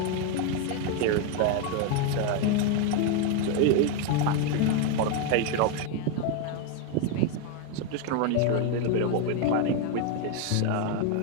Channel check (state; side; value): different; both; correlation 0.01